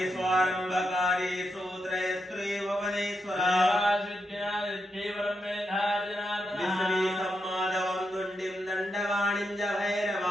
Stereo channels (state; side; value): normal; both; correlation 0.84